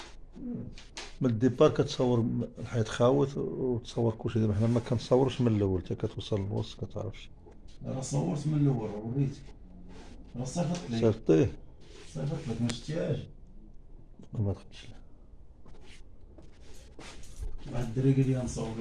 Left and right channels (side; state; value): both; identical; correlation 1.00